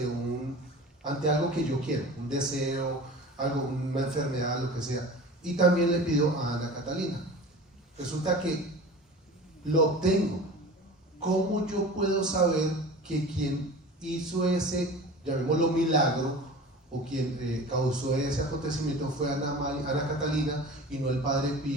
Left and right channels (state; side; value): normal; both; correlation 0.37